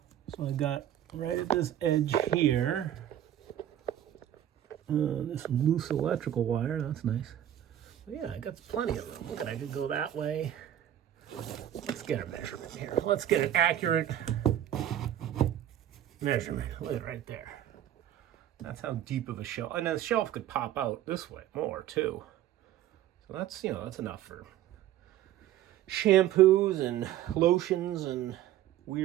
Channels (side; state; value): left; quieter; 11.7 dB